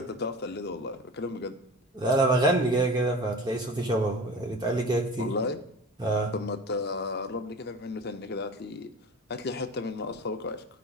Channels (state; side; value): normal; both; correlation 0.36